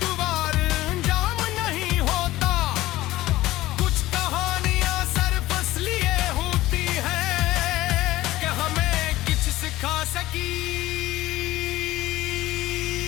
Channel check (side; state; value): right; quieter; 16.8 dB